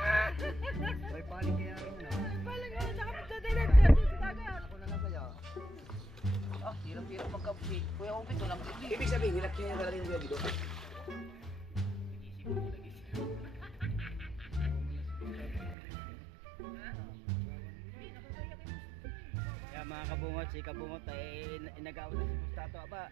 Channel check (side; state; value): left; drops out; at 15.8 s